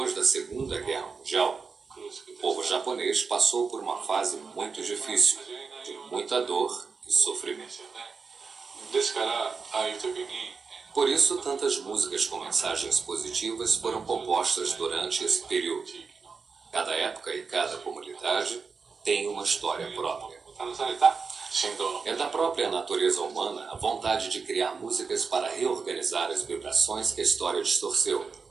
da Segunda Guerra Mundial, o povo japonês passou por uma fase muito difícil, de muita dor e sofrimento. ですからああいう時に Por isso, tantas músicas com mensagens positivas foram compostas durante esse período. Cada época e cada comunidade tem uma história própria. 試された振動の É da própria natureza humana a vontade de criar músicas para reorganizar as vibrações que a história distorceu.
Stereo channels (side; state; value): left; quieter; 5.0 dB